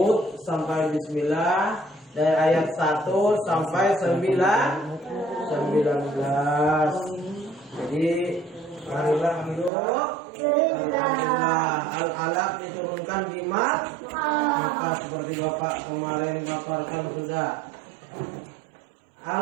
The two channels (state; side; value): drops out; left; at 9.7 s